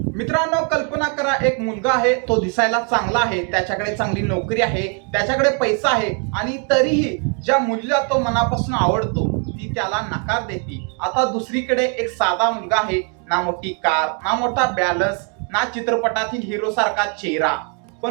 मित्रांनो, कल्पना करा, एक मुलगा आहे, तो दिसायला चांगला आहे, त्याच्याकडे चांगली नोकरी आहे, त्याच्याकडे पैसा आहे आणि तरीही ज्या मुलीला तो मनापासून आवडतो ती त्याला नकार देते. आता दुसरीकडे एक साधा मुलगा आहे, ना मोठी कार, ना मोठा बॅलन्स, ना चित्रपटातील हिरो सारखा चेहरा,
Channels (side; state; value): left; quieter; 39.6 dB